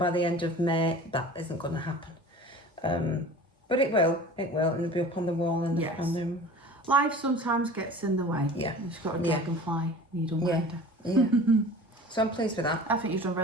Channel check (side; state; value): both; normal; correlation 0.40